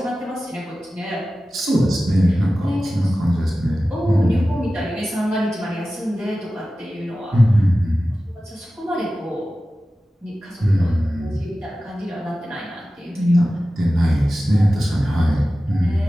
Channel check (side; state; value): both; normal; correlation 0.95